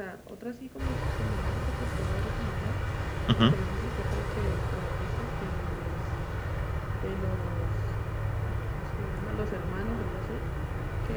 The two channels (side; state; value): both; identical; correlation 1.00